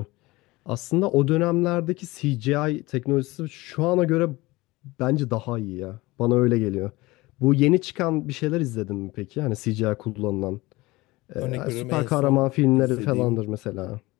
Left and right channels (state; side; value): quieter; right; 20.9 dB